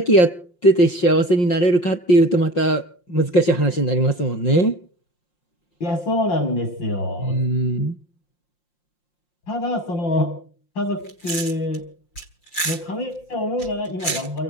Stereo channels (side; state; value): right; late; 5.7 ms